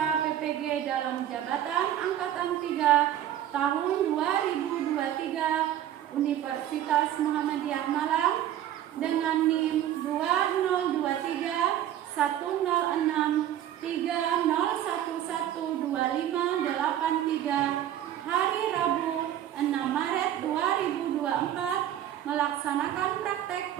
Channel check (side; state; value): left; quieter; 11.5 dB